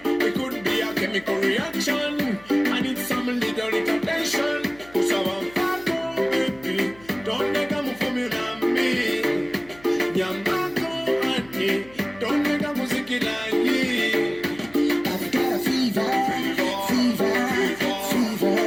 It could be a chemical reaction. I need some little attention. Kusaba mfako baby. Don't nega mufumula me. Nyambako ati. Don't nega muzikila ye. I've got a fever.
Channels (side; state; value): left; noise; hum, 24 dB below the sound